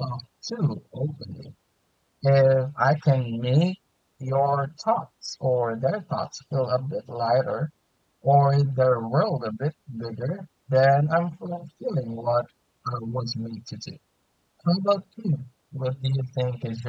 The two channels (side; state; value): both; identical; correlation 1.00